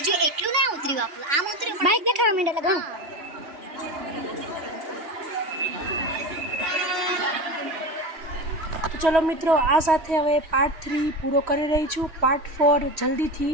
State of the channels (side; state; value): left; late; 3.1 ms